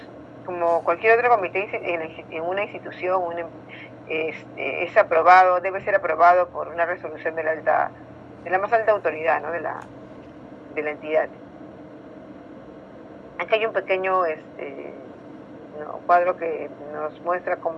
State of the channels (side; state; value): both; identical; correlation 1.00